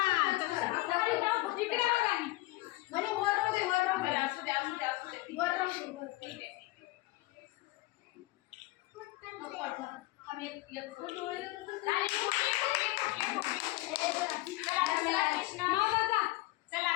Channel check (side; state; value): right; quieter; 20.1 dB